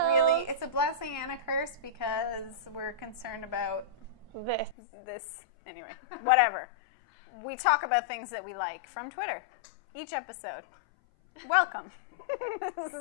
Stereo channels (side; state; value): right; drops out; at 4.8 s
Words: it's a blessing and a curse because we're concerned about this. Anyway, whatever. We talk about things that we like from Twitter each episode. Welcome. This